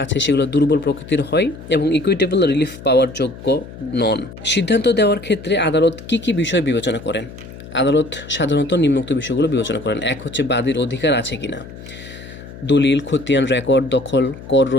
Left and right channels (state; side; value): noise; left; hum, 15 dB below the sound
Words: আছে সেগুলো দুর্বল প্রকৃতির হয় এবং ইকুইটেবল রিলিফ পাওয়ার যোগ্য নন। সিদ্ধান্ত দেওয়ার ক্ষেত্রে আদালত কি কি বিষয় বিবেচনা করেন? আদালত সাধারণত নিম্নোক্ত বিষয়গুলো বিবেচনা করেন। এক হচ্ছে বাদীর অধিকার আছে কিনা, দলিল, খতিয়ান, রেকর্ড, দখল, কর